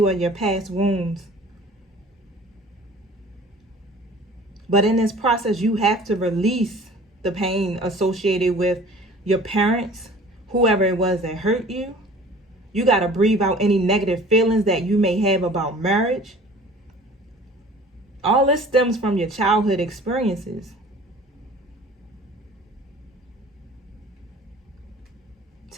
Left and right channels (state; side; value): normal; both; correlation 0.47